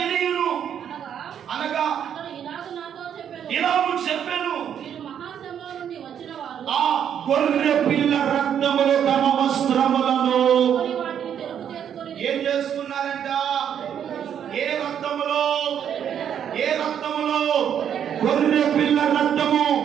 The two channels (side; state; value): left; quieter; 8.9 dB